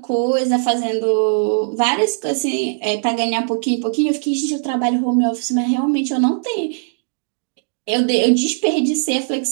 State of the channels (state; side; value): silent; left; digital silence